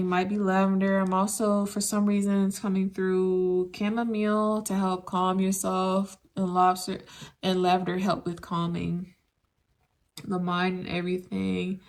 might be lavender. I'm also, for some reason, it's coming through chamomile to help calm yourself, and lobster and lavender help with calming the mind and everything.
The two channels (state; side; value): identical; both; correlation 1.00